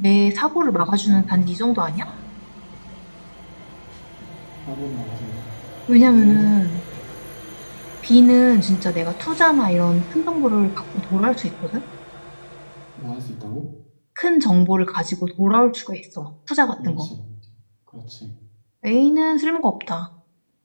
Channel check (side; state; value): both; inverted; correlation -1.00